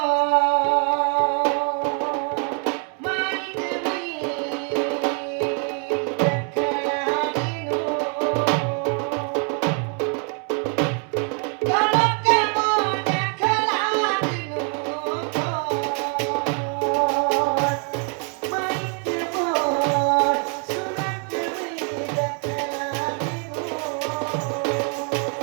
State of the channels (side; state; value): left; quieter; 37.5 dB